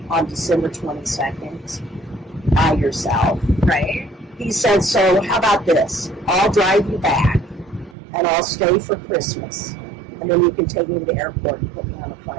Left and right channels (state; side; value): drops out; left; at 8.0 s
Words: on December 22nd by yourself. Right. He said, so how about this? I'll drive you back, and I'll stay for Christmas, and then you can take me to the airport and put me on a